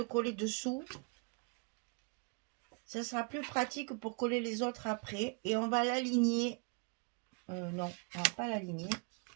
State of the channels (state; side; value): quieter; left; 34.7 dB